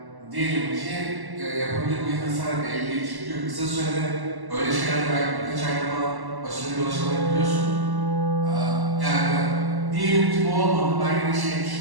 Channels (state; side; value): late; left; 1.1 ms